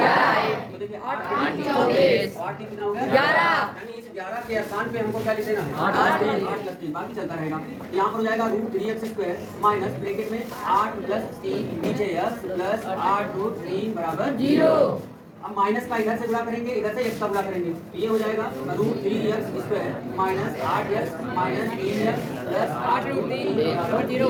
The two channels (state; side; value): identical; both; correlation 1.00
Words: तो देखिए 8 कितना हो गया, 11। यानी इस 11 के स्थान पे हमको क्या लिख देना है, 8 + 3 बाकी चलता रहेगा। यहाँ पर हो जाएगा √3x² माइनस ब्रैकेट में 8 + 3 नीचे x प्लस 8√3 बराबर 0। अब माइनस का इधर से गुणा करेंगे, इधर से x का गुणा करेंगे, तो ये हो जाएगा √3x² minus 8x minus 3x plus 8√3 बराबर 0।